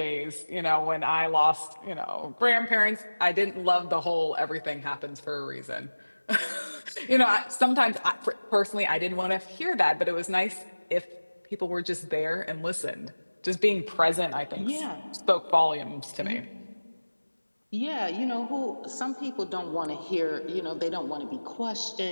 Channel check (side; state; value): both; inverted; correlation -1.00